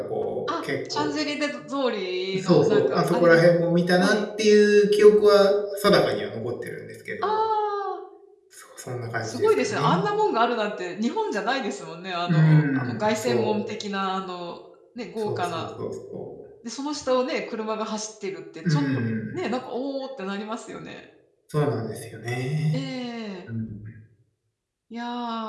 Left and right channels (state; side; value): identical; both; correlation 1.00